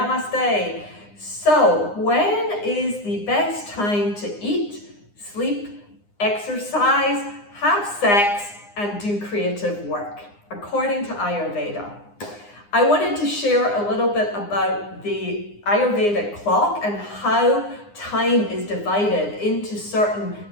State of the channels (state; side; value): late; right; 9.7 ms